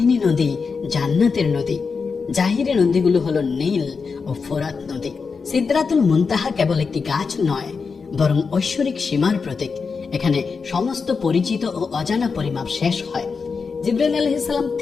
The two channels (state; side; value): quieter; right; 5.1 dB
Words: নদী জান্নাতের নদী। জাহিরি নদীগুলো হলো নীল ও ফোরাত নদী। সিদরাতুল মুনতাহা কেবল একটি গাছ নয়, বরং ঐশ্বরিক সীমার প্রতীক। এখানে সমস্ত পরিচিত ও অজানা পরিমাপ শেষ হয়। জিবরাইল আলাইহিস সালাম